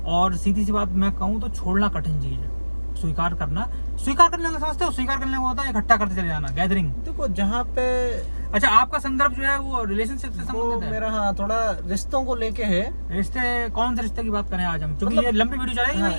और सीधी सी बात मैं कहूँ तो छोड़ना कठिन चीज है। स्वीकार करना समझते हो? स्वीकार करने को होता है इकट्ठा करते चले जाना, गैदरिंग। देखो, जहाँ पे अच्छा, आपका संदर्भ जो है वो रिलेशनशिप से संबंधित है? मेरा हाँ, थोड़ा रिश्तों को लेके है। रिश्ते, कौन से रिश्ते की बात करें आज हम? क्योंकि ये लंबी वीडियो चलेगी। हाँ,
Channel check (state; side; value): inverted; both; correlation -1.00